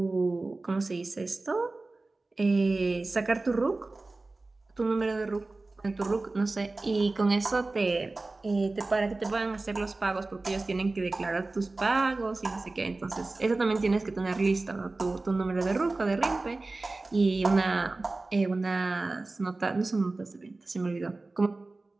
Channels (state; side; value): quieter; left; 3.3 dB